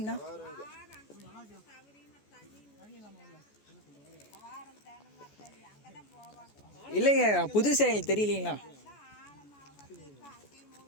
இல்லைங்க, புதுசாக எங்களுக்கு தெரியலீங்களா?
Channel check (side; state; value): right; late; 14 ms